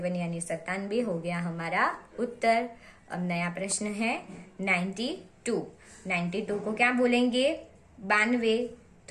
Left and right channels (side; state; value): both; identical; correlation 1.00